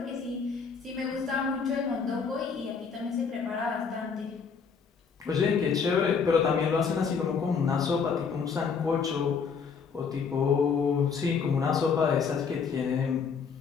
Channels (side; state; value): right; quieter; 5.9 dB